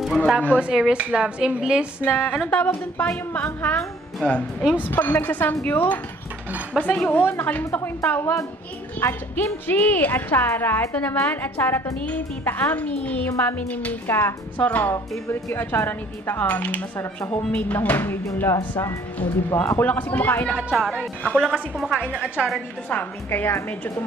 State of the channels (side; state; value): both; normal; correlation 0.57